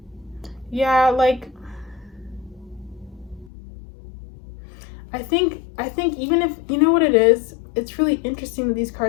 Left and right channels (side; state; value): right; drops out; at 3.5 s